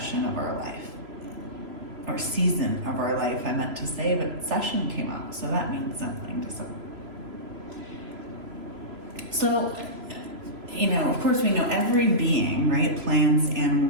of our life. Or season of our life, I meant to say, but session came out, so that means something to some. So, of course we know every being, right, plants,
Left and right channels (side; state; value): left; late; 3.0 ms